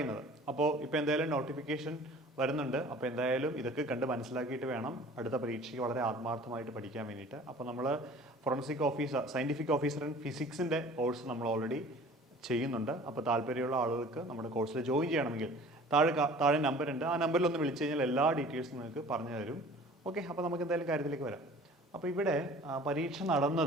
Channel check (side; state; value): both; normal; correlation 0.47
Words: അപ്പോൾ ഇപ്പോൾ എന്തായാലും നോട്ടിഫിക്കേഷൻ വരുന്നുണ്ട്. അപ്പോൾ എന്തായാലും ഇതൊക്കെ കണ്ട് മനസ്സിലാക്കിയിട്ട് വേണം അടുത്ത പരീക്ഷയ്ക്ക് വളരെ ആത്മാർത്ഥമായിട്ട് പഠിക്കാൻ വേണ്ടിയിട്ട്. അപ്പോൾ നമ്മൾ forensic officer, scientific officer in ഫിസിക്സിൻ്റെ കോഴ്സ് നമ്മൾ ഓൾറെഡി ചെയ്യുന്നുണ്ട്. അപ്പോൾ താല്പര്യമുള്ള ആളുകൾക്ക് നമ്മുടെ കോഴ്സിൽ ജോയിൻ ചെയ്യണമെങ്കിൽ താഴെ നമ്പർ ഉണ്ട്. ആ നമ്പറിൽ ഒന്ന് വിളിച്ചു കഴിഞ്ഞാൽ എല്ലാ ഡീറ്റെയിൽസും നിങ്ങൾക്ക് പറഞ്ഞു തരും. ഓക്കെ, അപ്പോൾ നമുക്ക് എന്തായാലും കാര്യത്തിലേക്ക് വരാം. അപ്പോൾ ഇവിടെ പരീക്ഷ